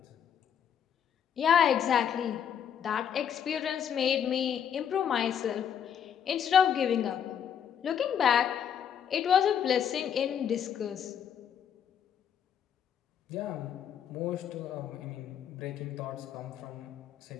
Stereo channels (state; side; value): quieter; right; 8.6 dB